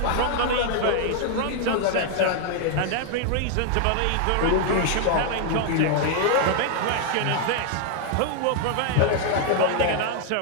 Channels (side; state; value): both; different; correlation 0.00